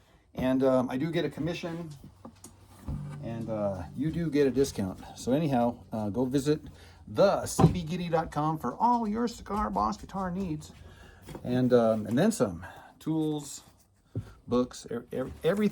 And I do get a commission, and you do get a discount. So anyhow, go visit the cbgitty.com for all your cigar box guitar needs, and then some tools, books,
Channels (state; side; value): identical; both; correlation 1.00